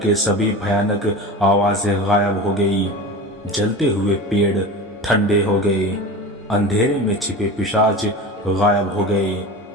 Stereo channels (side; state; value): both; normal; correlation 0.31